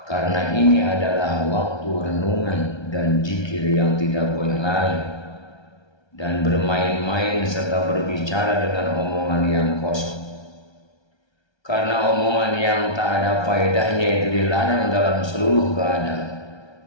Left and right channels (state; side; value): late; right; 1.3 ms